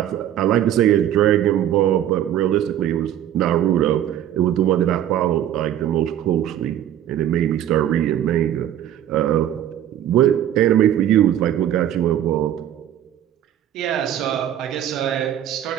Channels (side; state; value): left; quieter; 11.2 dB